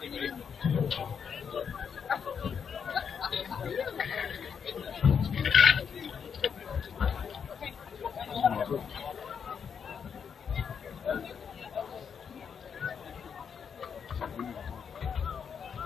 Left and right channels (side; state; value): right; quieter; 6.9 dB